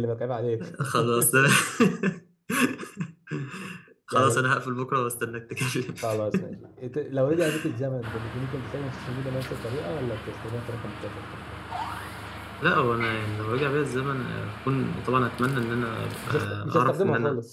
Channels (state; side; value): identical; both; correlation 1.00